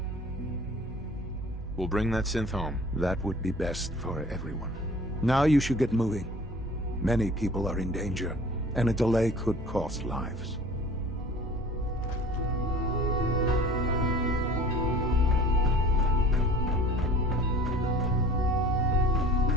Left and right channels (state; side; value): normal; both; correlation 0.46